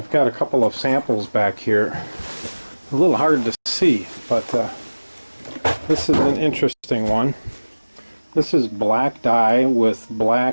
got a couple of samples back here. A little hard to see, but this is an interesting one. This is black dye with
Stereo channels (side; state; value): both; inverted; correlation -1.00